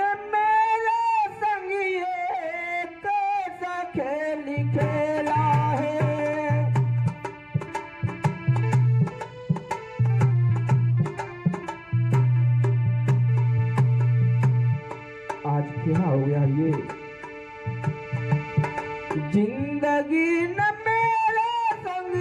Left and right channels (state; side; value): identical; both; correlation 1.00